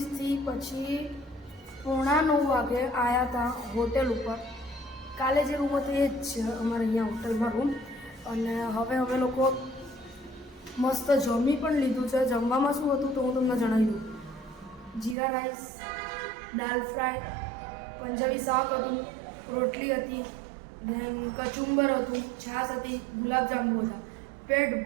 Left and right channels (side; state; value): left; drops out; at 15.2 s